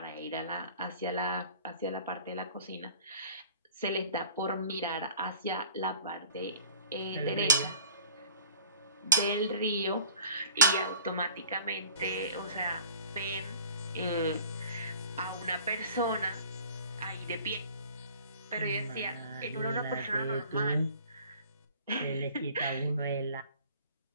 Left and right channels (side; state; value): both; inverted; correlation -0.47